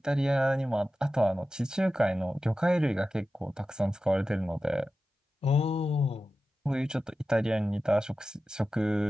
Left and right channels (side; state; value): both; normal; correlation 0.94